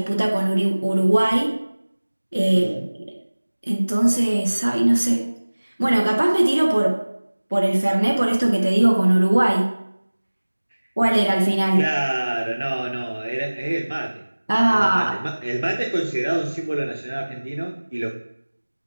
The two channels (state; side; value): inverted; both; correlation -1.00